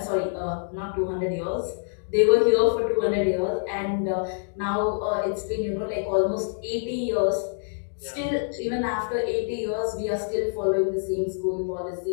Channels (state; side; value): silent; right; digital silence